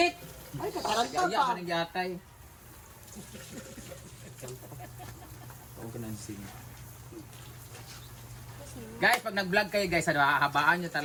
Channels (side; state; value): both; identical; correlation 1.00